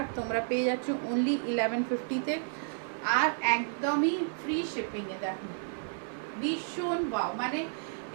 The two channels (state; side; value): silent; left; digital silence